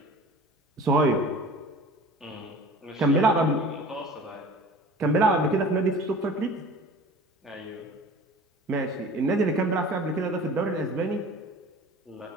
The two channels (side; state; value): both; normal; correlation 0.41